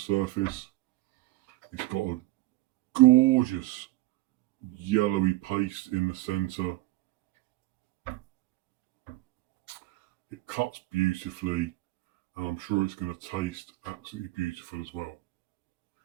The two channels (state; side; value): quieter; left; 18.9 dB